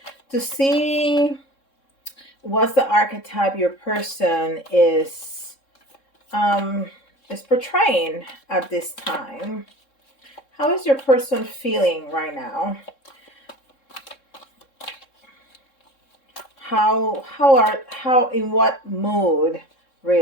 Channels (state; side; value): late; right; 3.7 ms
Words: to see what's the archetype your person um, is portraying at this time. How is your person feeling right now? How in what mood